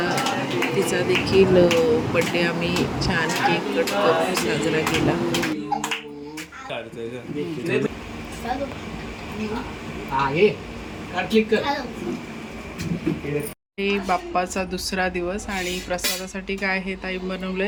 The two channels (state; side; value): identical; both; correlation 1.00